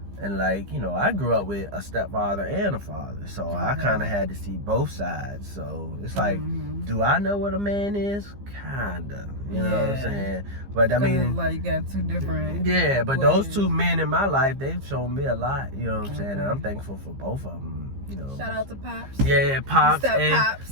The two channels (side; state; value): left; late; 15 ms